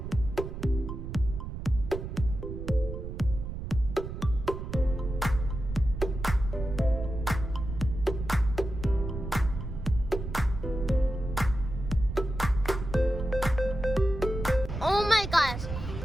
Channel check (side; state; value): right; noise; rumble, 7 dB below the sound